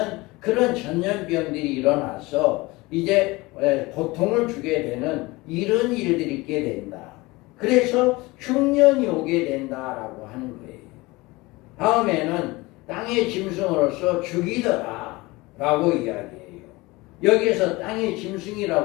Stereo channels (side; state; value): right; quieter; 22.2 dB